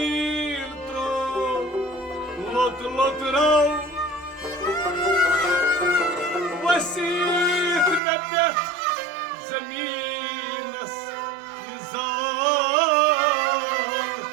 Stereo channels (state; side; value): drops out; left; at 8.0 s